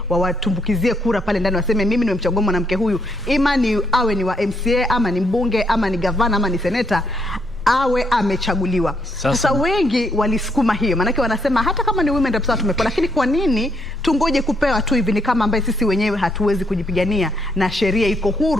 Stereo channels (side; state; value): both; normal; correlation 0.74